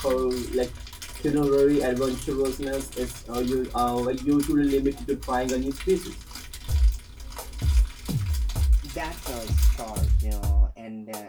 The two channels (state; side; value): identical; both; correlation 1.00